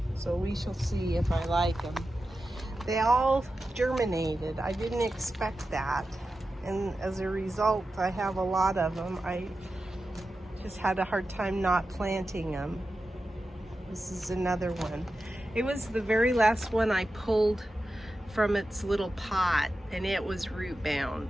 so we shall see if I like them. They all germinated. I didn't expect that, and as a result I have a lot of them. I just had a hard time not planting them. This is another one. It was the very last one I pulled from its little pot, and it was root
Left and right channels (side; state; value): both; normal; correlation 0.92